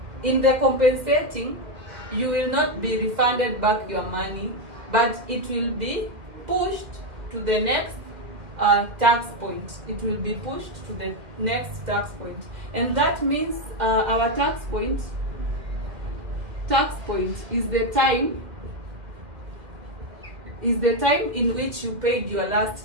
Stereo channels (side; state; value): left; late; 2.2 ms